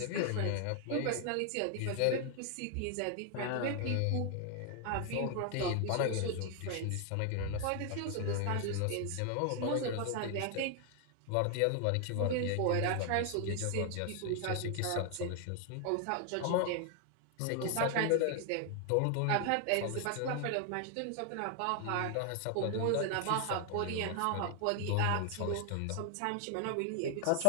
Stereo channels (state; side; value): different; both; correlation 0.00